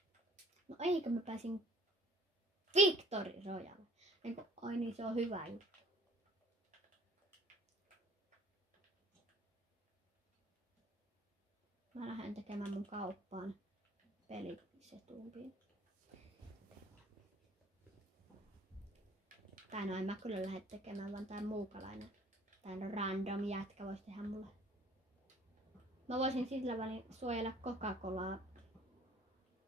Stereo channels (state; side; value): normal; both; correlation 0.54